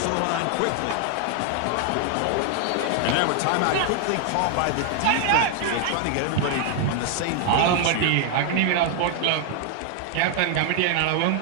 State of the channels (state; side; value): different; both; correlation 0.00